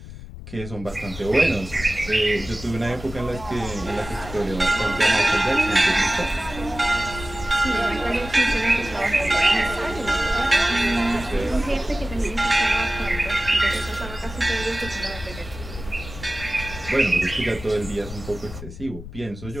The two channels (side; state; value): left; noise; rumble, 12 dB below the sound